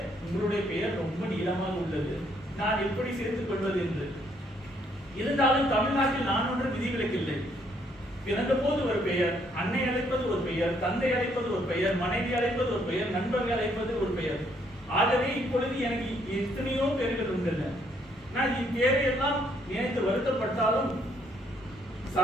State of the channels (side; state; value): both; normal; correlation 0.69